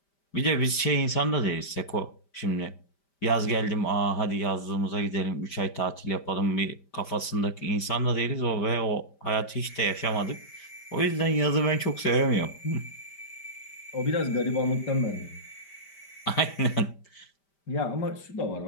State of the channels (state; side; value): late; right; 5.1 ms